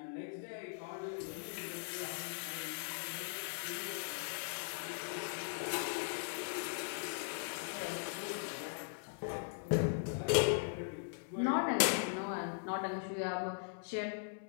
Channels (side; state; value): right; silent; digital silence